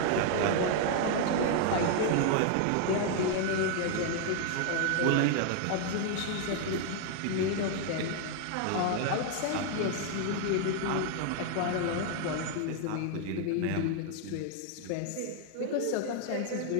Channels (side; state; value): both; different; correlation 0.00